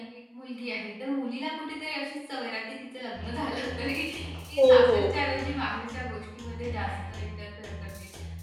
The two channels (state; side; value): identical; both; correlation 1.00